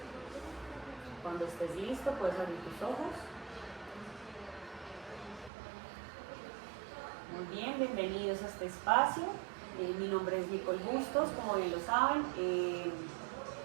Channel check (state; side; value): drops out; left; at 5.5 s